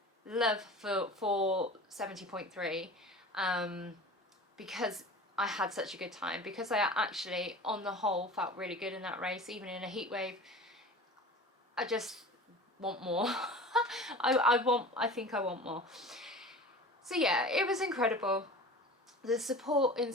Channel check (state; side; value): normal; both; correlation 0.38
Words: love for 70.3, because I had such a good time, because I actually on the whole felt really good in that race, even in a heat wave. I just want more. I think I want more. So yeah, it was incredible. The support in